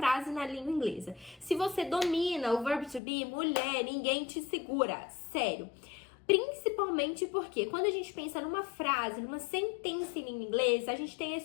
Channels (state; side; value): drops out; right; at 3.0 s